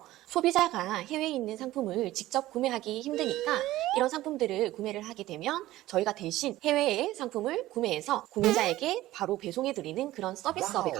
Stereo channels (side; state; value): left; quieter; 16.0 dB